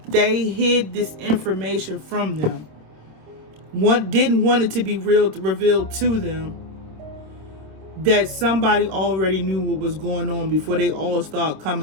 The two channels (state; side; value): late; left; 27 ms